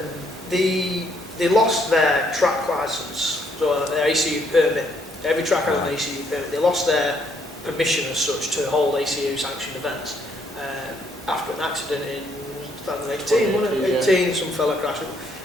they lost their track licence, so their ACU permit. Every track has an ACU permit. They lost their permission as such to hold ACU sanctioned events after an accident in 2018, wasn't it? 18, some fella crashed,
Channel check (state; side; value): normal; both; correlation 0.70